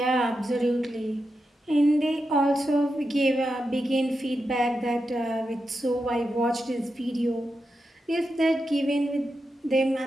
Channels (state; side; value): normal; both; correlation 0.88